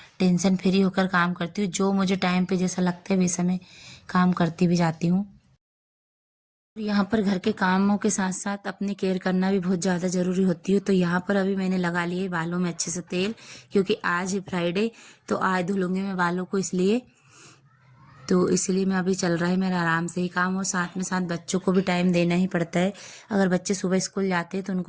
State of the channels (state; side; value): identical; both; correlation 1.00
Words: टेंशन फ्री होकर काम करती हूँ। जो मुझे टाइम पे जैसा लगता है वैसा मैं काम करती भी जाती हूँ। यहाँ पर घर के कामों के साथ साथ अपनी केयर करना भी बहुत ज़्यादा ज़रूरी होती है। तो यहाँ पर अभी मैंने लगा लिए बालों में अच्छे से तेल, क्योंकि आज है फ्राइडे तो आज धुलूंगी मैं बालों को, इसलिए मैं अभी चल रहा है मेरा आराम से ही काम। और साथ में साथ बच्चों को भी टाइम देना ही पड़ता है। अगर बच्चे सुबह स्कूल जाते हैं तो